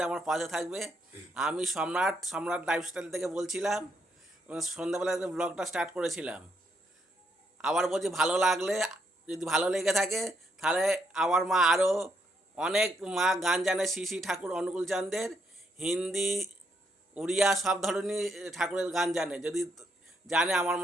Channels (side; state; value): both; normal; correlation 0.76